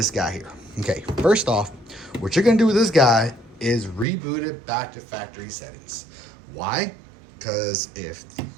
guy here. Okay, first off, what you're gonna do with this guy is reboot it back to factory settings. Why? Because if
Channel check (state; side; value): drops out; left; at 4.0 s